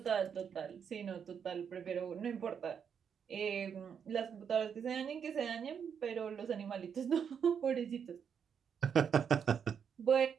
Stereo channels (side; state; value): left; quieter; 7.4 dB